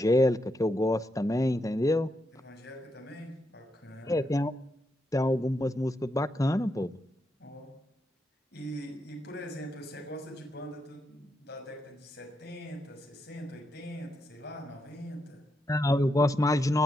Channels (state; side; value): normal; both; correlation 0.82